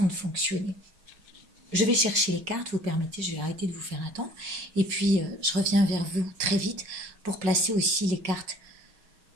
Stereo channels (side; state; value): left; late; 5.4 ms